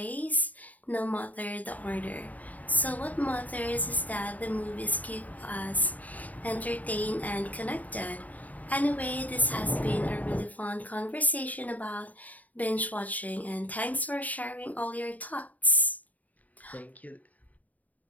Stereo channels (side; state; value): right; late; 0.075 ms